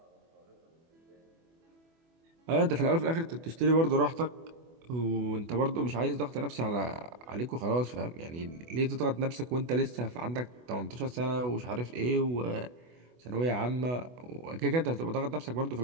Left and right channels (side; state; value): left; late; 24 ms